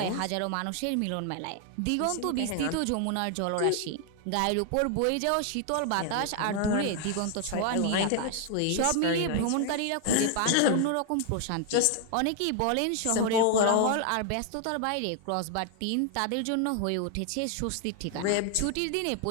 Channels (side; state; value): both; different; correlation 0.00